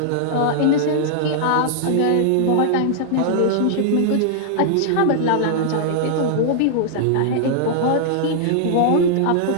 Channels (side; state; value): both; different; correlation -0.01